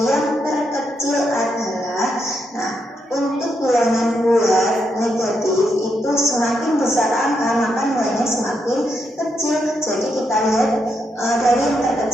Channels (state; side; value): normal; both; correlation 0.81